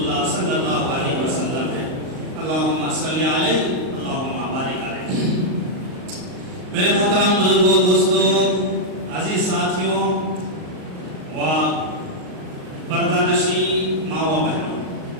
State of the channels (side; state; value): left; late; 38 ms